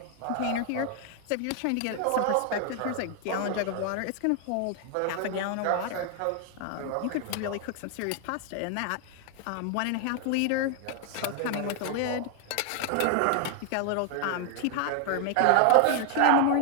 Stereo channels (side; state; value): both; different; correlation 0.00